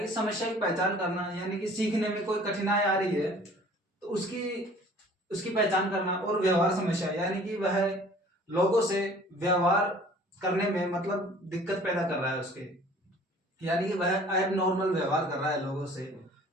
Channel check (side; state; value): both; normal; correlation 0.50